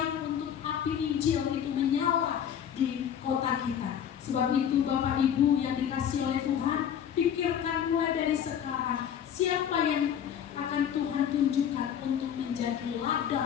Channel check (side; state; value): right; quieter; 9.0 dB